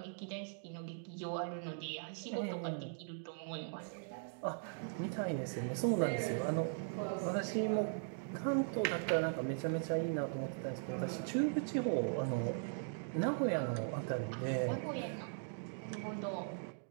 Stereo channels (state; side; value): silent; left; digital silence